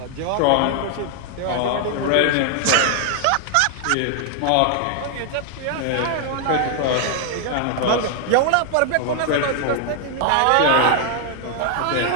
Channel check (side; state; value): both; different; correlation 0.00